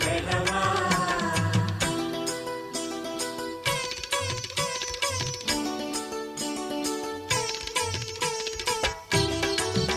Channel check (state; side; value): identical; both; correlation 1.00